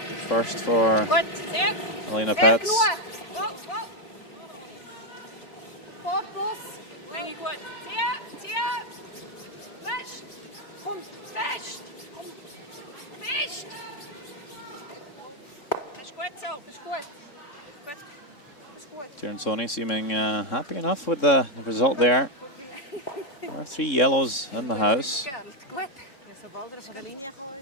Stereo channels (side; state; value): right; late; 3.7 ms